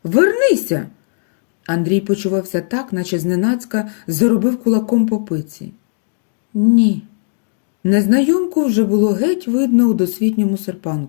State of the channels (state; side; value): silent; right; digital silence